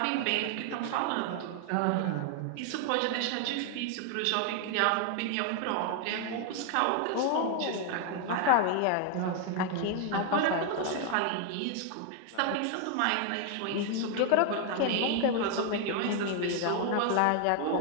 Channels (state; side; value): different; both; correlation 0.00